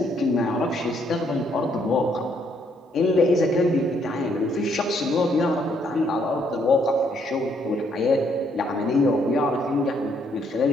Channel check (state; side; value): normal; both; correlation 0.70